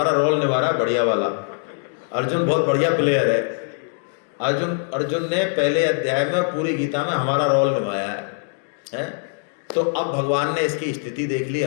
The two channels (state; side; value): silent; right; digital silence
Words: रोल निभा रहा है बढ़िया वाला। अर्जुन बहुत बढ़िया प्लेयर है। अर्जुन ने पहले अध्याय में पूरी गीता में हमारा रोल निभाया है? तो अब भगवान ने इसकी स्थिति देख ली